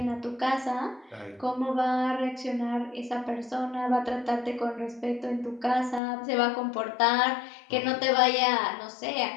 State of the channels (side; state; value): right; drops out; at 6.0 s